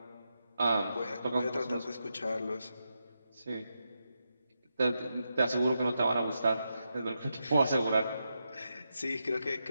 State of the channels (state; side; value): inverted; both; correlation -0.86